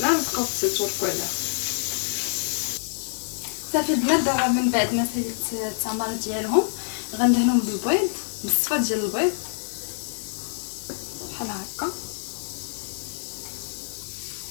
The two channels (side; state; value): right; silent; digital silence